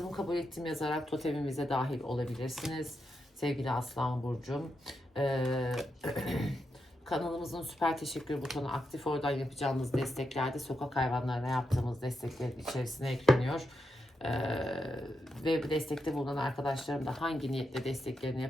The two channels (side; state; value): both; normal; correlation 0.85